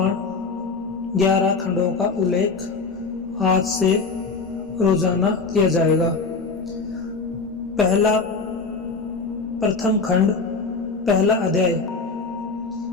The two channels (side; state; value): right; quieter; 4.4 dB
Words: 11 खंडों का उल्लेख आज से रोजाना किया जाएगा। प्रथम खंड, पहला अध्याय।